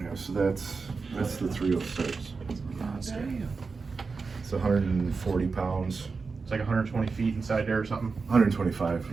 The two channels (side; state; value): left; quieter; 4.6 dB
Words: so that's the 306. Monster. It's 140 pounds. It's like 120 feet inside there or something. 125.